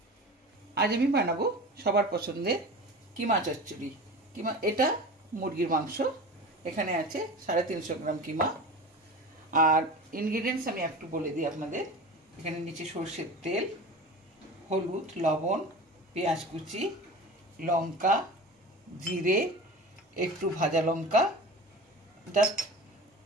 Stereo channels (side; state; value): both; normal; correlation 0.34